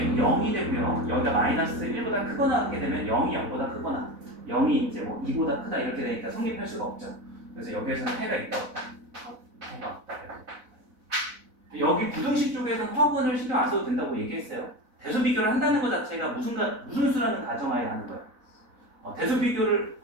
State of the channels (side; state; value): left; late; 4.0 ms